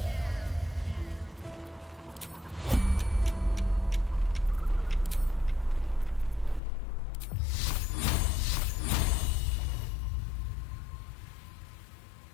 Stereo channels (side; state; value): right; drops out; at 6.6 s